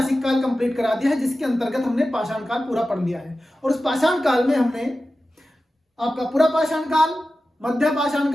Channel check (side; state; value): both; normal; correlation 0.94